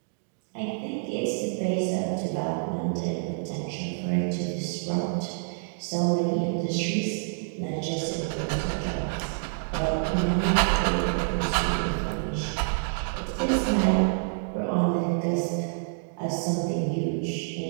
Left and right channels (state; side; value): silent; left; digital silence